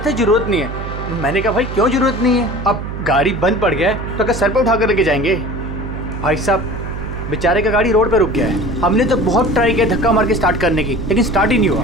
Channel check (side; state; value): right; noise; hum, 7 dB below the sound